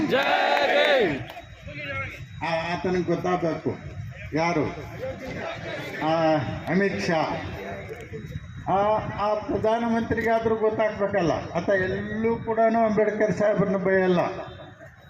ಆತನಿಗೆ ಗೊತ್ತಾಗಬೇಕು ಯಾರು, ಅಮಿತ್ ಶಾ. ಆ ಪ್ರಧಾನಮಂತ್ರಿಗಾದ್ರೂ ಗೊತ್ತಾಗ್ಬೇಕಲ್ಲ. ಆತ ಎಲ್ಲೂ ಕೂಡ ಅಂಬೇಡ್ಕರ್ ಸಾಹೇಬ್ರನ್ನ ಬೈಯಲ್ಲ,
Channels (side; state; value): both; identical; correlation 1.00